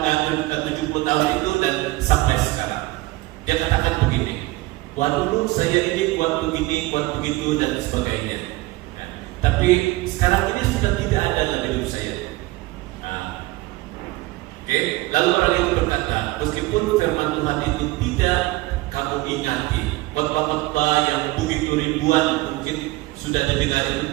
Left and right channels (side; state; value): left; quieter; 20.0 dB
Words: tahun itu dan sampai sekarang? Dia katakan begini, wah dulu saya ini kuat begini, kuat begitu dan sebagainya. Ya, tapi sekarang ini sudah tidak ada dalam hidup saya. Oke, lalu orang itu berkata, meskipun firman Tuhan itu tidak kamu ingati, khotbah-khotbah yang begitu ribuan mungkin sudah didengar itu